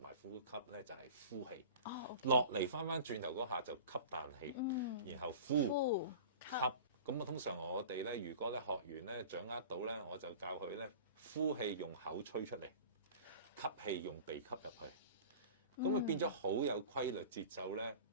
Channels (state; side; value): inverted; both; correlation -0.38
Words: 埋呼吸咧，就係呼氣。落嚟翻轉頭嗰下就吸啖氣，然後呼吸。咁通常我哋咧，如果咧學員咧掌握到咧，我就教佢咧呼氣用口吹出嚟，吸氣用鼻吸入去。咁變咗好有規律節奏咧，